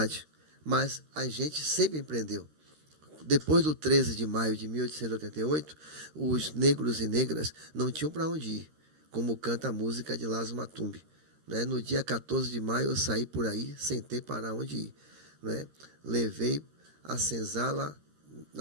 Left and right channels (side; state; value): left; late; 13 ms